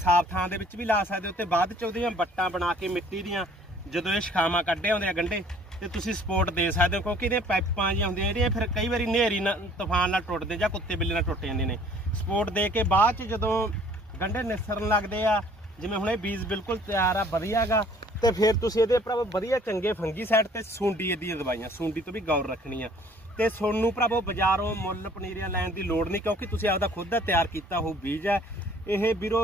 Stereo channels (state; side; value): normal; both; correlation 0.56